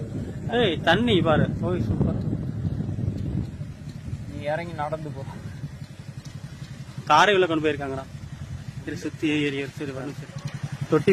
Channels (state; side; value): identical; both; correlation 1.00